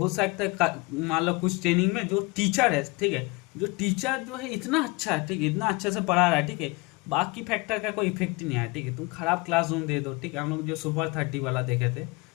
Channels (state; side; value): quieter; right; 25.5 dB